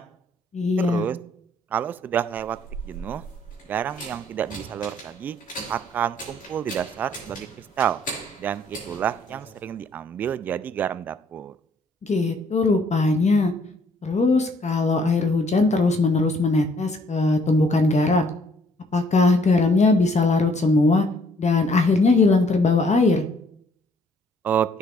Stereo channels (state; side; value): normal; both; correlation 0.63